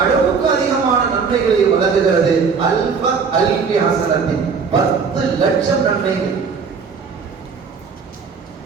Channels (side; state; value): left; quieter; 5.6 dB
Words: அதிகமான நன்மைகளை வழங்குகிறது. அல்ஃபி ஹஸனத்தின் 10 லட்சம் நன்மைகள்.